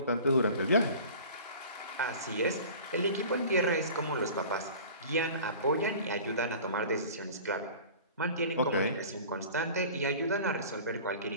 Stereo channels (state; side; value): inverted; both; correlation -0.41